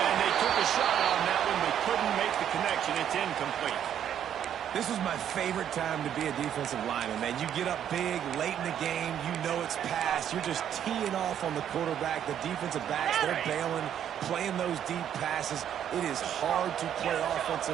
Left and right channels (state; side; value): quieter; left; 9.7 dB